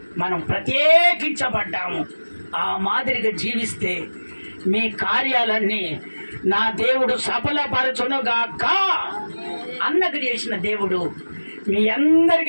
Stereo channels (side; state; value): both; inverted; correlation -1.00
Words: మనం ప్రత్యేకించబడ్డాము. ఆ మాదిరిగా జీవిస్తే మీ కార్యాలన్నీ నా దేవుడు సఫలపరచునుగాక. అన్నకు చేసిన దేవుడు మీ